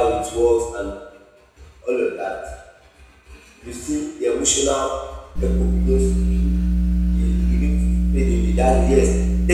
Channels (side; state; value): both; identical; correlation 1.00